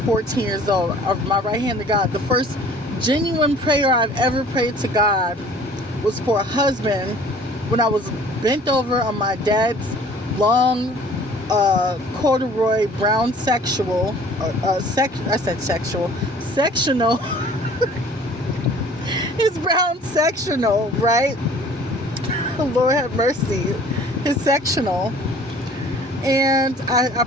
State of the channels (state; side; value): normal; both; correlation 0.50